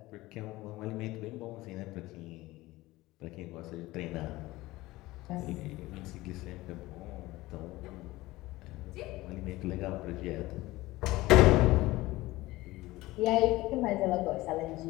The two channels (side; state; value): right; quieter; 18.9 dB